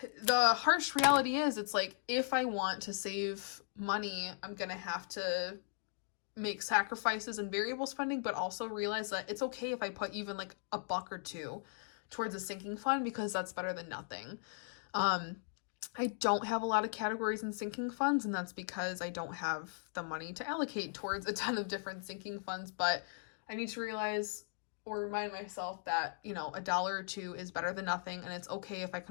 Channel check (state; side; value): silent; right; digital silence